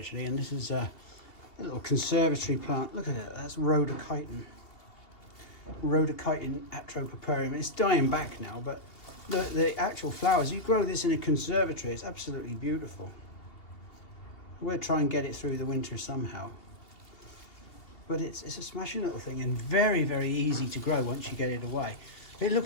and this is a little conservatory plant. Look at it, that's Rhodochiton. Rhodochiton atropoparium. It's dying back now, but the actual flowers, you grow this in a conservatory, it's absolutely beautiful. We'll try and get it through the winter somehow. But it's a smashing little thing, and very, very easy to grow once you get it away. It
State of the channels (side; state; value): right; late; 2.7 ms